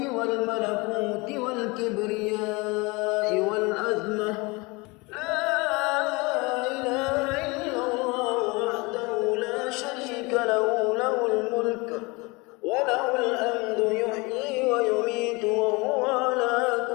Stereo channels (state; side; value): quieter; right; 25.9 dB